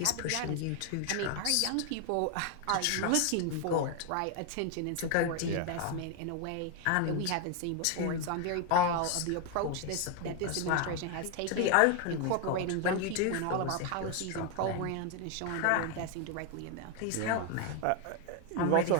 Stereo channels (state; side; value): different; both; correlation 0.01